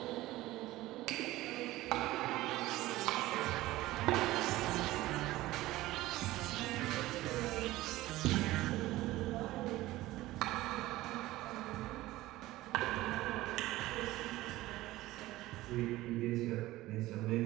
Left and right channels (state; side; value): quieter; left; 17.2 dB